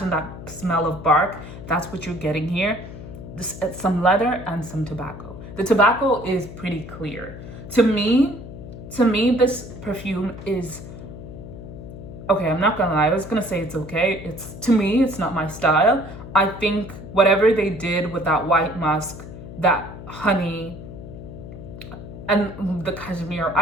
that smell of bark. That's what you're getting here. Some leather and some tobacco. The tobacco is pretty clear. To me, this perfume is okay. I'm not gonna lie, I was gonna say it's okay. To me, it's not my style. I think whatever they did with that white musk, that honey, and the cashmere,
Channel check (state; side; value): noise; left; hum, 13 dB below the sound